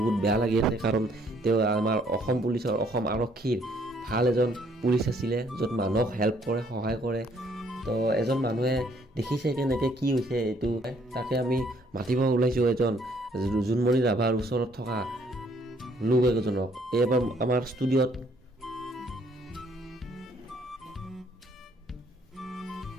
বেয়া লাগি আছে কাৰণ তেওঁ আমাৰ অসম পুলিচৰ অসম আৰক্ষীৰ ভাল এজন পুলিচ আছিলে য'ত মানুহক হেল্প কৰে সহায় কৰে তো এজন মানুহে দেখিছে কেনেকৈ কি হৈছে এইটো তাকে আমি মাতিব ওলাইছোঁ এজন জুনমণি ৰাভাৰ ওচৰত থকা লোক এজনক এইবাৰ আমাৰ ষ্টুডিঅ'ত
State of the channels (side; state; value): both; normal; correlation 0.65